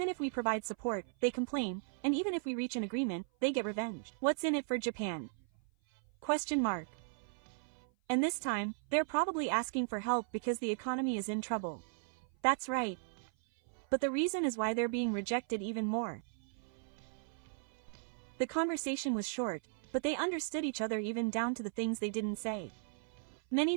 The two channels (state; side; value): silent; left; 53 dB below the other